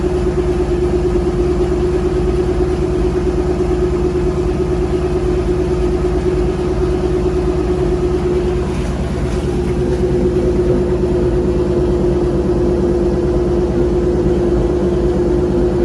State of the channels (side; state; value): both; identical; correlation 1.00